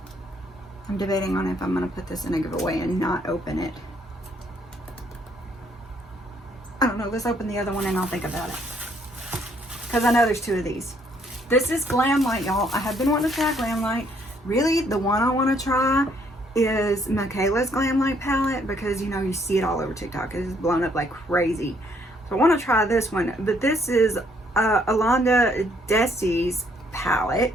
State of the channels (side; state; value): both; normal; correlation 0.67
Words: I'm debating on if I'm going to put this in a giveaway and not open it. I don't know. Let's open the other one and I'll think about it. because I know there's 2 of these. This is Glamlite, y'all. I have been wanting to try Glamlite. Really, the one I want to try is Michaela's Glamlight Palette, because, you know, you see it all over TikTok. It's blown up like crazy. So I want to try this one. But this is alondradessy's